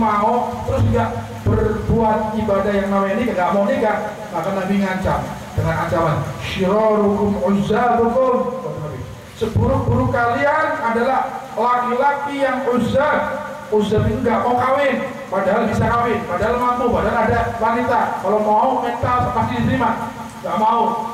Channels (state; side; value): identical; both; correlation 1.00